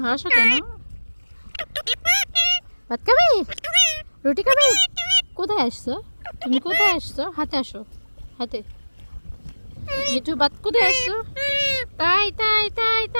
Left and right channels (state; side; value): inverted; both; correlation -1.00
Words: হাসো কেন? ভাত খাবে? রুটি খাবে? কোথায় আসছো তুমি? কোথায় আসছো? হাতে আসো, হাতে। মিঠু ভাত কোথায় আসছো? তাই তাই তাই